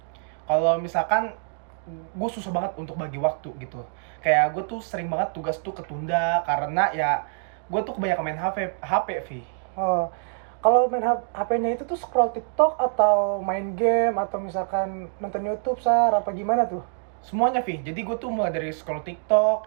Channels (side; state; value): left; silent; digital silence